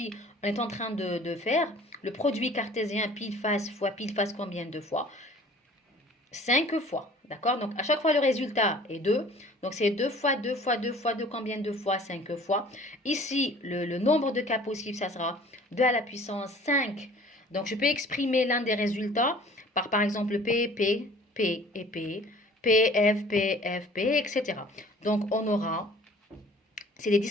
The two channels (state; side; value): normal; both; correlation 0.50